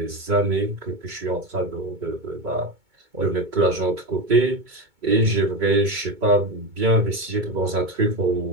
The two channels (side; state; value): left; late; 2.2 ms